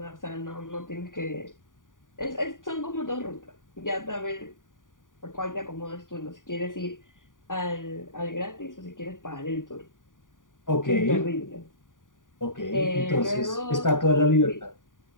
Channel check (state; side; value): late; right; 0.88 ms